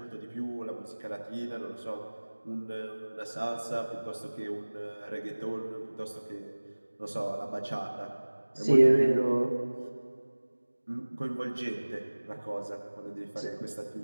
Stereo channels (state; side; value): inverted; both; correlation -1.00